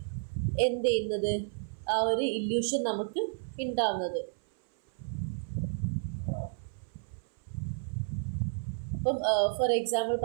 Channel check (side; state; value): left; silent; 57 dB below the other